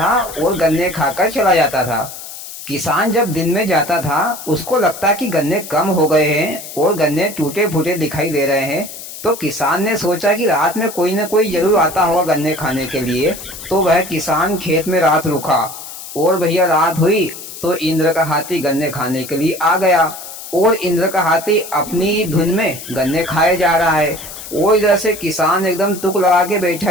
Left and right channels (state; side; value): noise; left; hiss, 12 dB below the sound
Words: और गन्ने खाकर चला जाता था। किसान जब दिन में जाता था, उसको लगता कि गन्ने कम हो गए हैं और गन्ने टूटे फूटे दिखाई दे रहे हैं। तो किसान ने सोचा कि रात में कोई न कोई जरूर आता होगा गन्ने खाने के लिए। तो वह किसान खेत में रात रुका और भैया रात हुई तो इंद्र का हाथी गन्ने खाने के लिए आ गया। और इंद्र का हाथी अपनी धुन में गन्ने खाए जा रहा है और इधर से किसान एकदम तुक लगा के बैठा